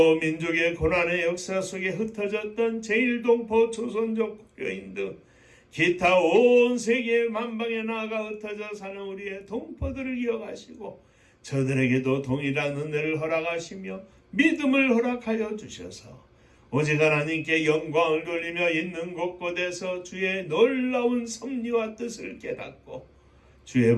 민족의 고난의 역사 속에 흩어졌던 제1동포 조선족 국교인 등 기타 온 세계 만방에 나아가 흩어져 사는 우리의 동포들을 이어가시고 저들에게도 동일한 은혜를 허락하시며 믿음을 허락하여 주셔서 오직 하나님께 영광을 돌리며 있는 곳곳에서 주의 놀라운 섭리와 뜻을 깨닫고 주의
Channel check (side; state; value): both; identical; correlation 1.00